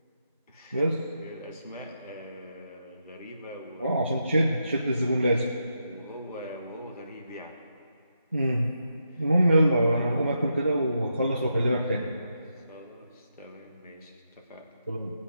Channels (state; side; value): inverted; both; correlation -0.83